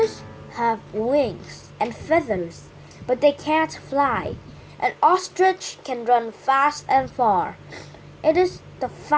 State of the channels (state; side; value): identical; both; correlation 1.00